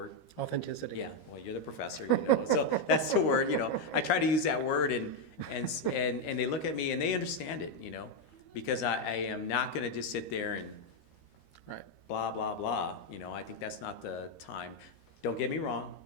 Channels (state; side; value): late; right; 13 ms